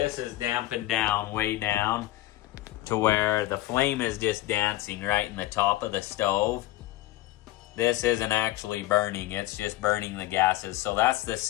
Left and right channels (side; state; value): right; quieter; 16.2 dB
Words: is dampened down, way down, to where the flame is just dancing right in the top of the stove. This isn't actually burning, it's just burning the gases. So that's the